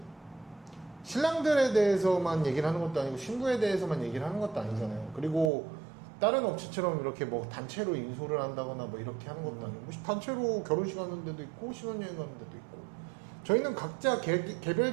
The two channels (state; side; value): drops out; left; at 5.5 s